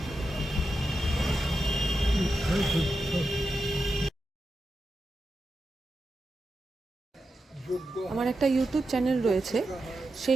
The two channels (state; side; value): normal; both; correlation 0.89